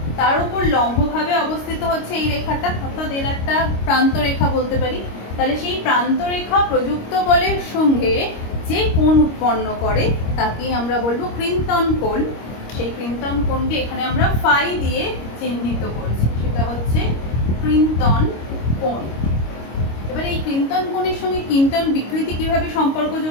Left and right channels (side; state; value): right; late; 25 ms